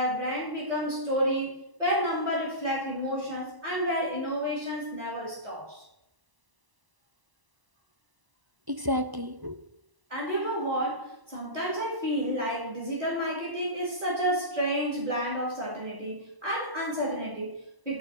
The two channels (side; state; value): left; late; 1.0 ms